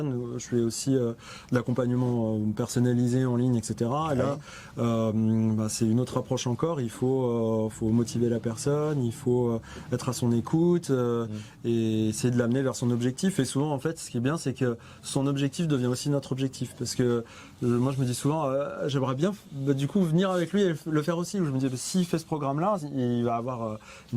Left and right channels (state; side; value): identical; both; correlation 1.00